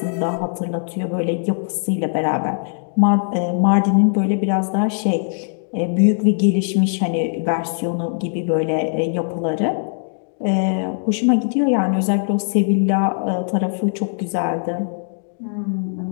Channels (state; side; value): silent; right; 66 dB below the other